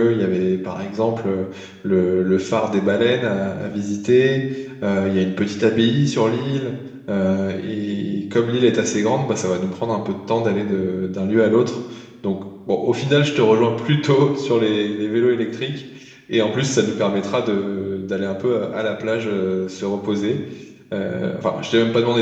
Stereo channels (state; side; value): identical; both; correlation 1.00